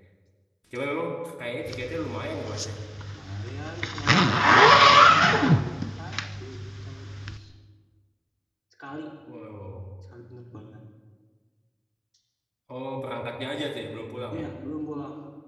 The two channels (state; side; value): identical; both; correlation 1.00